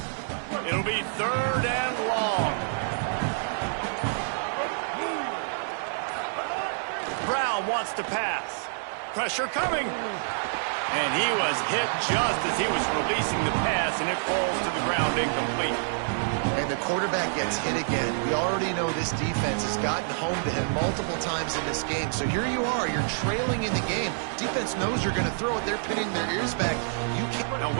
It'll be 3rd and long. Brown wants to pass. Pressure coming. And he was hit just as he was releasing the pass, and it falls to the ground incomplete. And the quarterback gets hit again. We already know this defense has gotten home to him multiple times in this game. So here you are. You're trailing in the game. Defense knows you're going to throw it. They're pinning their ears back. You can't. Now,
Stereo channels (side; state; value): left; silent; 60 dB below the other